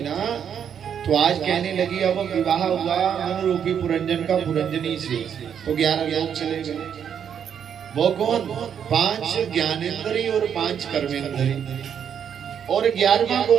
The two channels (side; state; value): left; quieter; 8.2 dB